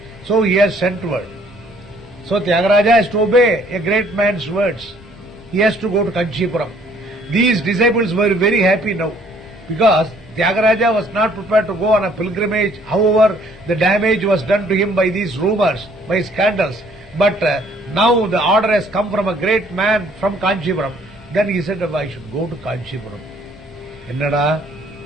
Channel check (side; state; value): both; normal; correlation 0.61